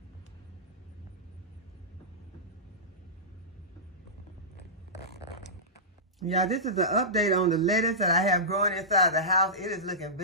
Yeah, this is an update on the lettuce that I have growing inside the house. It is looking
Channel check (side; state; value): both; normal; correlation -0.17